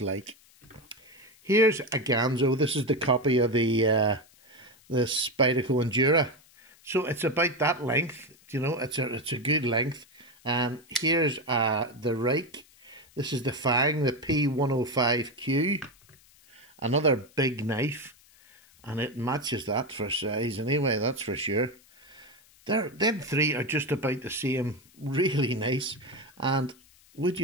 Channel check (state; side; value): noise; left; hiss, 28 dB below the sound